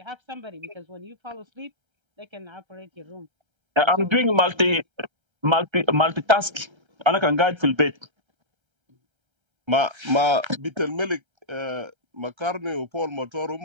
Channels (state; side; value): late; left; 1.3 ms